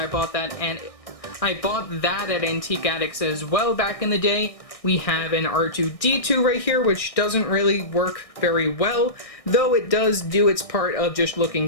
bought that at Antique Addicts as well back in the day. We have an R2-D2 right here, which doesn't really work very well, though it does do its part of just looking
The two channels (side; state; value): right; late; 1.6 ms